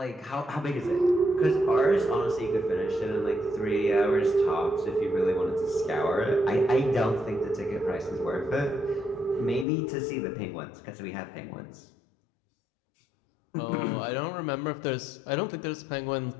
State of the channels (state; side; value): drops out; right; at 9.7 s